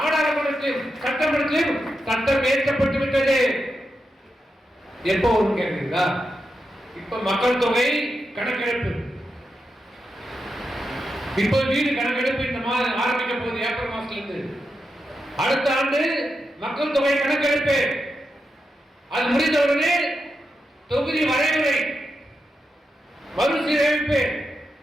சட்டமன்றத்திலும் சட்டம் ஏற்றப்பட்டு விட்டது. எப்போ ஒரு கேட்கிறீங்களா? இப்ப மக்கள் தொகை கணக்கெடுப்பு, இப்ப வீடு கணக்கெடுப்பு இந்த மாதம் ஆரம்பிக்க போகுது. ஏப்ரல் மாசத்திலிருந்து அடுத்த ஆண்டு மக்கள் தொகை கணக்கெடுப்பு. அது முடிந்தவுடனே தொகுதி வரைமுறை மறுசீரமைப்பு.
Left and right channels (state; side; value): normal; both; correlation 0.87